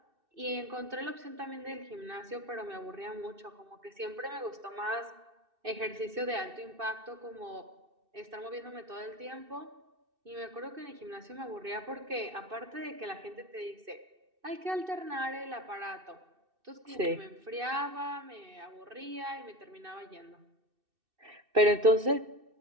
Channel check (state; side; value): late; left; 2.6 ms